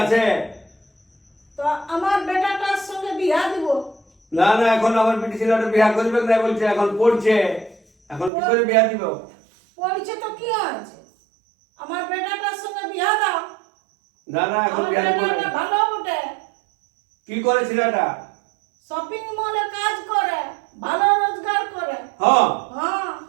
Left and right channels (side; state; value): left; drops out; at 8.3 s